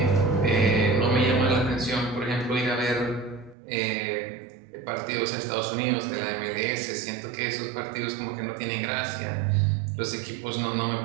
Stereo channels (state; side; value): drops out; left; at 3.6 s